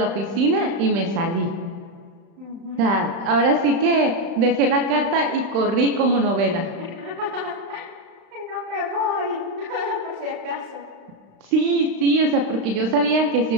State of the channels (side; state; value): left; late; 35 ms